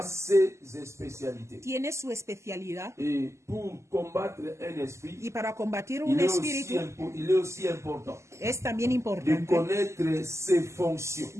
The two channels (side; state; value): left; late; 0.13 ms